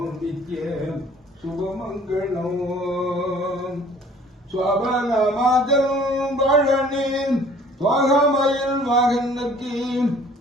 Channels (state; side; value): normal; both; correlation 0.53